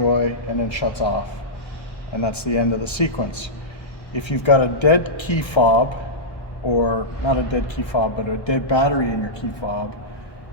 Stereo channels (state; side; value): late; right; 1.1 ms